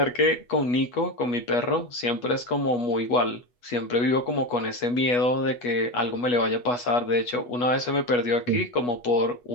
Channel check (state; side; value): late; right; 8.2 ms